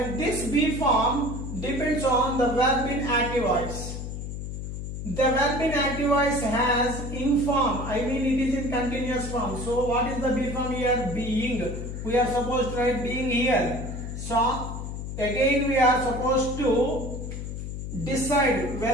this be form depends on the verb in active voice. The verb in active voice has in form, I mean it is in continuous form. So what is the be form here? Being. We are supposed to write being here. So again we are supposed to decide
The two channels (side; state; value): left; noise; hum, 6 dB below the sound